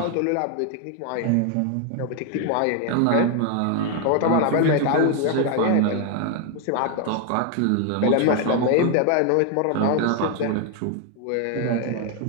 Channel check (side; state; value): both; different; correlation 0.01